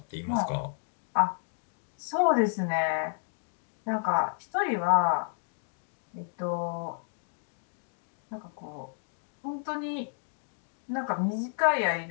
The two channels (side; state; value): right; silent; digital silence